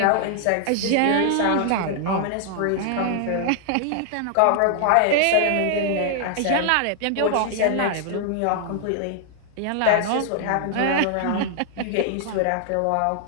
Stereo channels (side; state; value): both; different; correlation 0.00